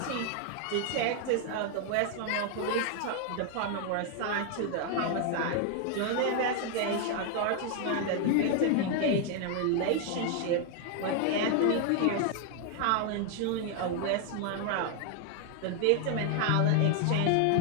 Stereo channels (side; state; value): both; different; correlation 0.00